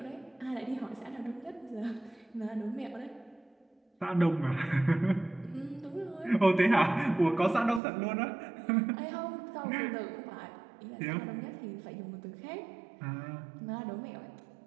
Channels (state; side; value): drops out; left; at 7.8 s